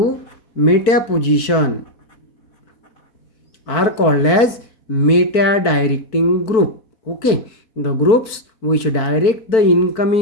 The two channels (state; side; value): late; right; 4.5 ms